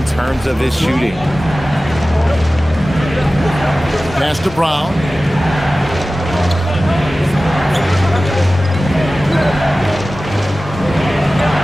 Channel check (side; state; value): both; normal; correlation 0.96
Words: terms of his shooting. Pass to Brown.